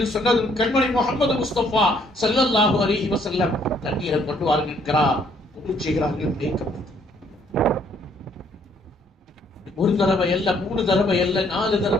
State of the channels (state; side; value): normal; both; correlation 0.66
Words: சொன்னதும் கண்மணி முஹம்மது முஸ்தபா ஸல்லல்லாஹு அலைஹி வஸல்லம் தண்ணீரை கொண்டு வாருங்கள் என்கிறார். செய்கிறார்கள். ஒரு தடவை அல்ல, 3 தடவை அல்ல, 4